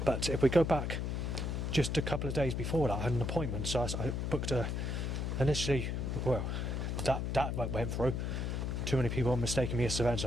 But if we go back just a couple of days before that, I had an appointment, so I booked initially, well, that went through. Too many people mistaking me as Savannah, so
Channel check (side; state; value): left; noise; hum, 1 dB below the sound